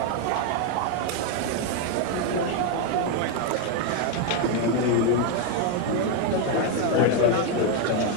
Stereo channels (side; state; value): both; different; correlation 0.01